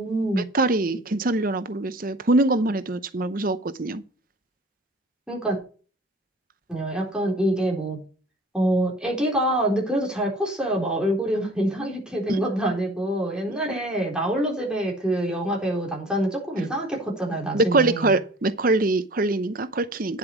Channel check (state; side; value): normal; both; correlation 0.46